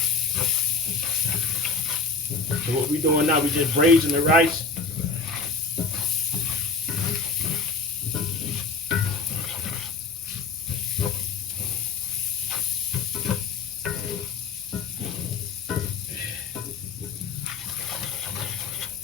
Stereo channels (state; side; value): quieter; right; 4.3 dB